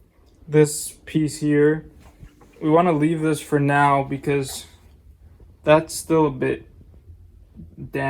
this piece here. We wanna leave this for now because that's still a bit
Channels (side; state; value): both; identical; correlation 1.00